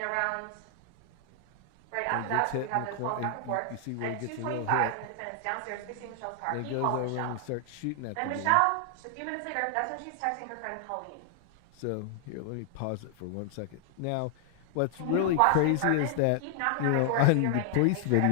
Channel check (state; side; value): different; both; correlation 0.00